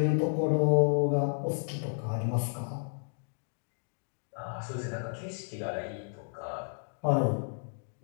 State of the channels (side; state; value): right; silent; digital silence